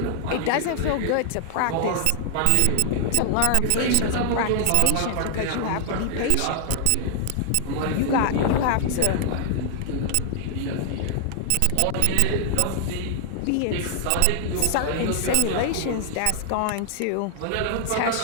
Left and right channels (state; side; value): different; both; correlation 0.00